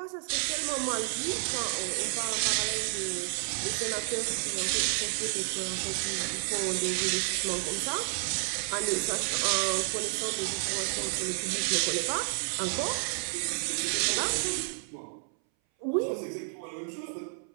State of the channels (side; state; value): left; silent; 57 dB below the other